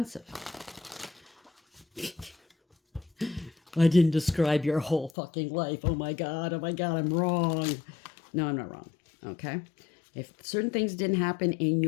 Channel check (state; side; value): drops out; right; at 5.2 s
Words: I didn't describe your whole fucking life. Oh my God, I'm wrong. No, I'm not wrong. Okay? If certain things didn't happen in